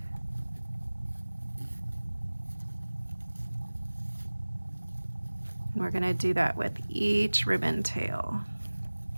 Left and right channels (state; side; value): inverted; both; correlation -1.00